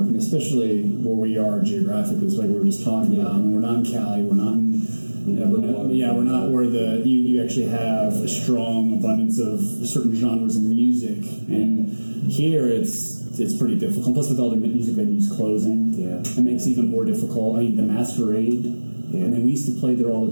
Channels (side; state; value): both; inverted; correlation -1.00